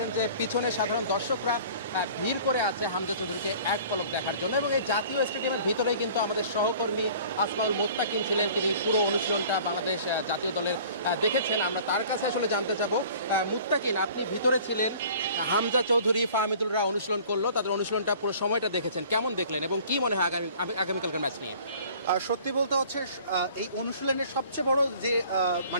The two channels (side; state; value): both; inverted; correlation -0.48